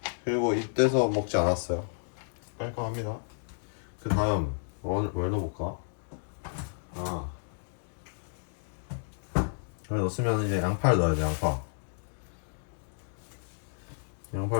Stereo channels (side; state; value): right; silent; digital silence